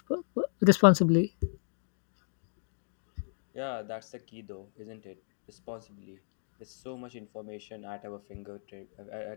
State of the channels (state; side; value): silent; right; digital silence